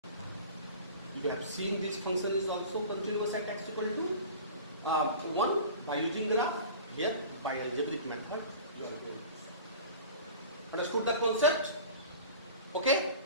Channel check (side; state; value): both; inverted; correlation -0.39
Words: 1. You have seen this function is also continuous at x equal to 1 by using graph. Here by algebraic method you are going to. Understood the concept? Okay.